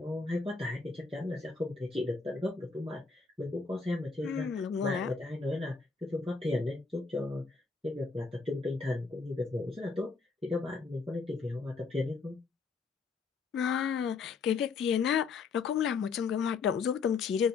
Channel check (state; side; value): quieter; right; 4.6 dB